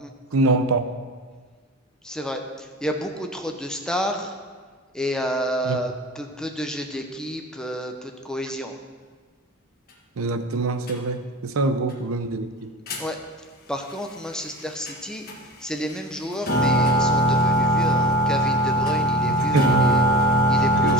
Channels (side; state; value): both; normal; correlation 0.33